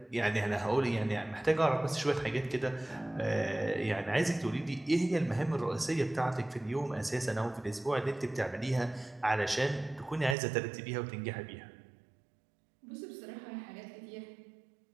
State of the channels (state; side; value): drops out; left; at 10.4 s